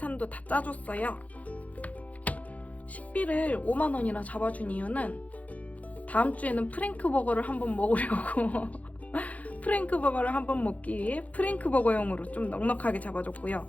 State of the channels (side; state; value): right; late; 0.070 ms